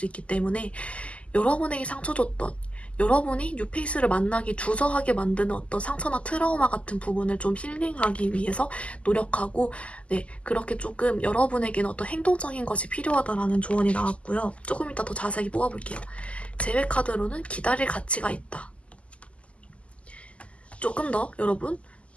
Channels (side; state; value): right; late; 0.060 ms